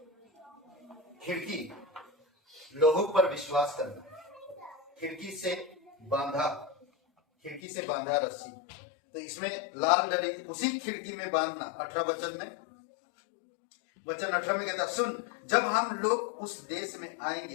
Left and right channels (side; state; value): right; drops out; at 7.6 s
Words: खिड़की, लोगों पर विश्वास करना, खिड़की से बांधा रस्सी, तो इसमें लाल डरी उसी खिड़की में बांधना। 18 वचन में, वचन 18 में कहता, सुन जब हम लोग उस देश में